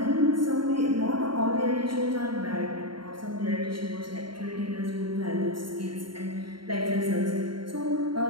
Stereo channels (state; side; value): late; left; 0.73 ms